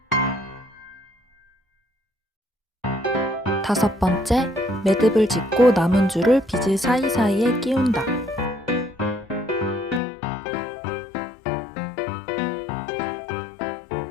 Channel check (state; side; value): drops out; right; at 10.0 s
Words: 다섯 번째, 매듭을 짓고 남은 줄을 비즈 사이사이에 끼운다.